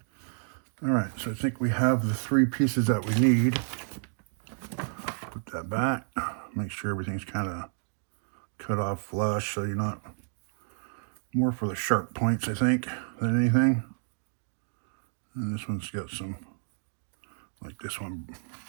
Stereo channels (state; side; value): silent; left; digital silence